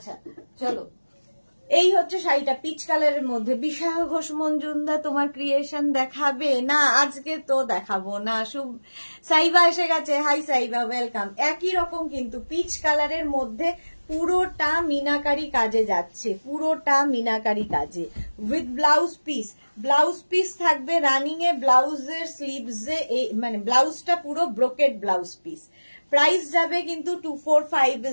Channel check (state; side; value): inverted; both; correlation -1.00